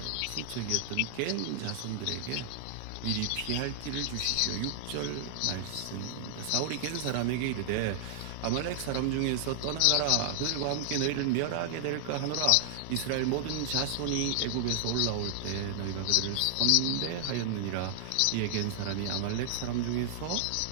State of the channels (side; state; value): both; different; correlation 0.00